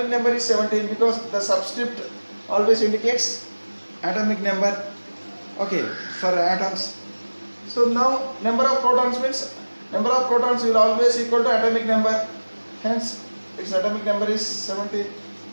number is 17 because the subscript always indicates atomic number. Okay, for atoms. So now number of protons means number of protons will always equal to atomic number. Hence its atomic number is 17.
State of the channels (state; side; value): inverted; both; correlation -1.00